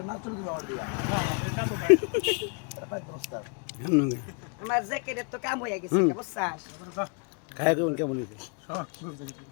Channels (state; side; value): quieter; right; 36.7 dB